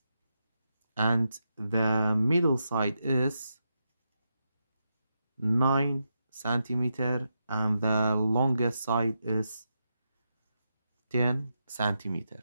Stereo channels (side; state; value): both; inverted; correlation -0.85